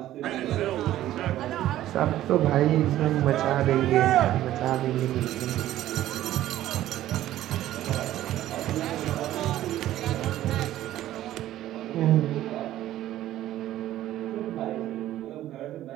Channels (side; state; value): left; quieter; 13.7 dB